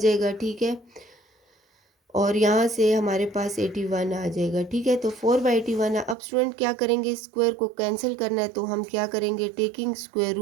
ठीक है। और यहाँ से हमारे पास 81 आ जाएगा, ठीक है। तो 4/81। अब स्टूडेंट क्या करेंगे, स्क्वायर को कैंसिल करना है तो हम क्या करेंगे, taking square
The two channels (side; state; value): left; drops out; at 6.2 s